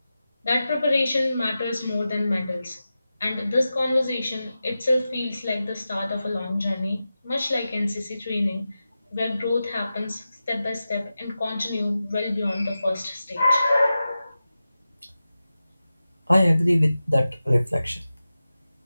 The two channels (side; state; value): both; inverted; correlation -0.93